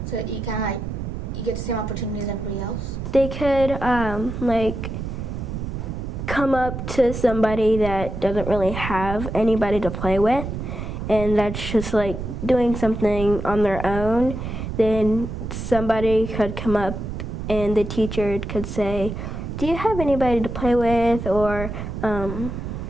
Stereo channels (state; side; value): noise; right; rumble, 6 dB below the sound